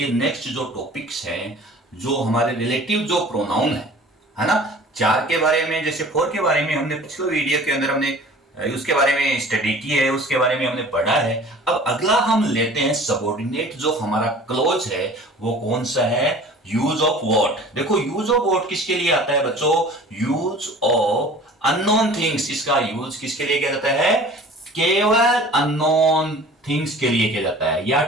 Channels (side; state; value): both; normal; correlation 0.45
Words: नेक्स्ट जो टॉपिक्स हैं, जो हमारे रिलेटिव जो प्रोनाउन है ना। चार के बारे में, जैसे फोर के बारे में हमने पिछले वीडियो के अंदर हमने उसके बारे में स्टडी की है, उसके बारे में हमने पढ़ा है। अब अगला हम लेते हैं सबऑर्डिनेट जो हमारा क्लोज है, वो कौन सा है? Use of what. देखो, यूज ऑफ व्हाट किसके लिए आता है बच्चों? Use of unknown things. इसका यूज किसके लिए किया जाता है? केवल अननोन थिंग्स के लिए किया जाता है, या